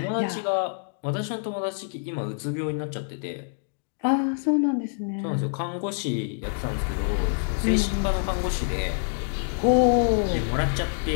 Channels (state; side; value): silent; right; digital silence